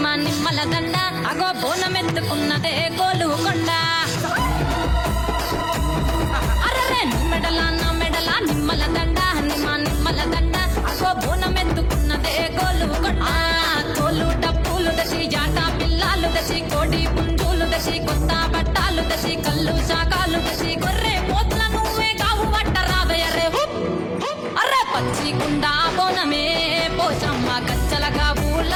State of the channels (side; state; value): both; identical; correlation 1.00